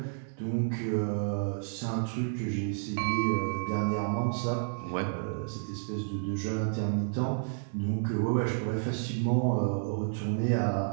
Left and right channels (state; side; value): silent; left; digital silence